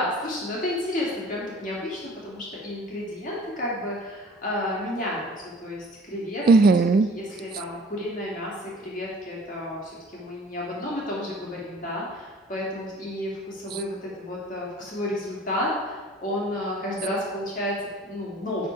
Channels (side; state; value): both; normal; correlation 0.48